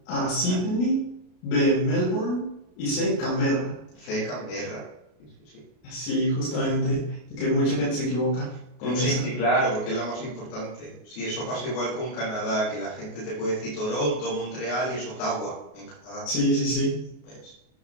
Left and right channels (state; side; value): late; right; 33 ms